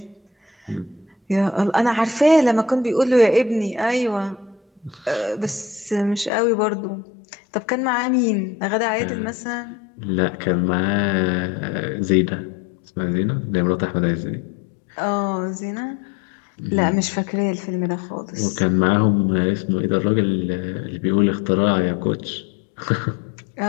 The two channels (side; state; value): right; drops out; at 6.3 s